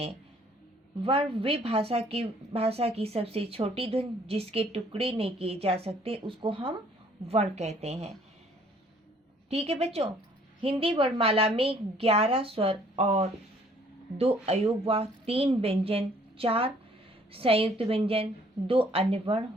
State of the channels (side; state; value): both; normal; correlation 0.60